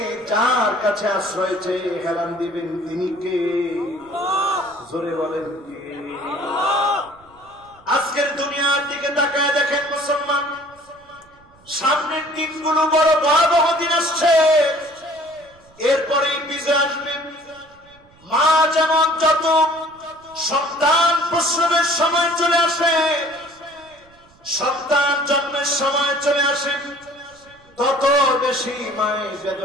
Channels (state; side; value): noise; right; rumble, 29 dB below the sound